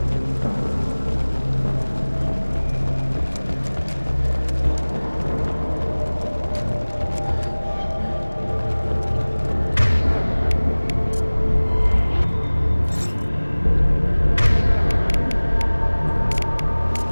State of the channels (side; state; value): both; inverted; correlation -1.00